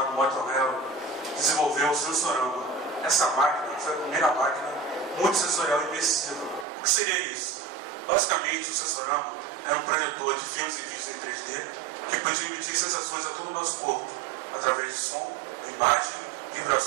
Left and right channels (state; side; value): drops out; left; at 6.7 s